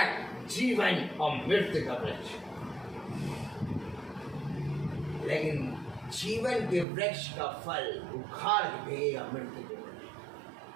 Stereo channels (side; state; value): left; drops out; at 6.9 s